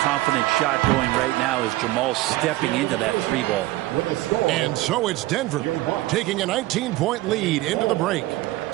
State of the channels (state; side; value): quieter; left; 18.0 dB